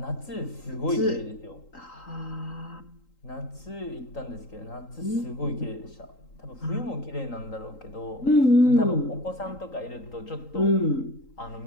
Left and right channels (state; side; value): late; right; 3.8 ms